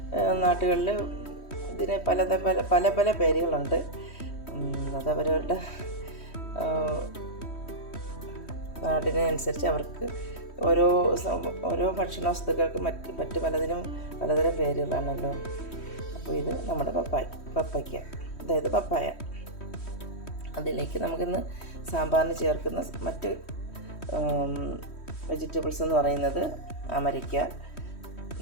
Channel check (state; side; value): late; right; 3.1 ms